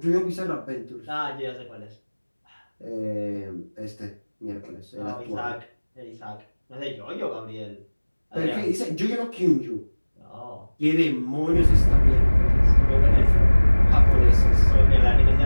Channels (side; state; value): both; inverted; correlation -1.00